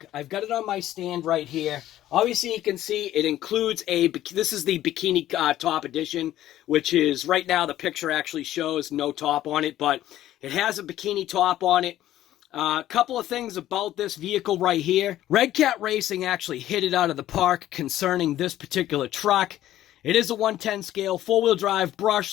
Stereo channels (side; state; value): right; quieter; 13.4 dB